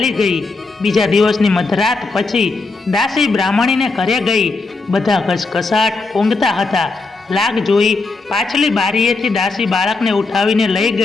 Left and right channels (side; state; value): right; quieter; 3.8 dB